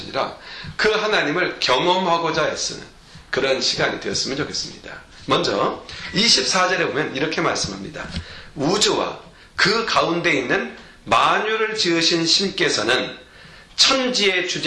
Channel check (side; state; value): both; identical; correlation 1.00